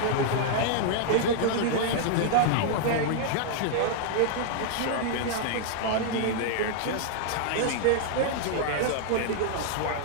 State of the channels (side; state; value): both; different; correlation -0.01